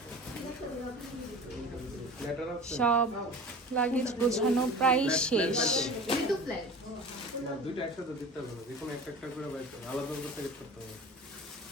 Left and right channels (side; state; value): both; normal; correlation 0.37